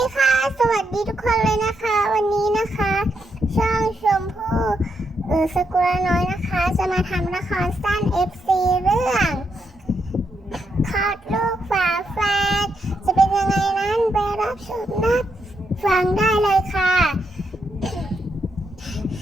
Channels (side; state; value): both; normal; correlation 0.81